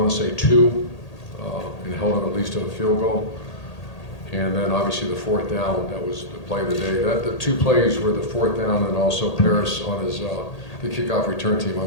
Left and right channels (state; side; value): late; right; 1.8 ms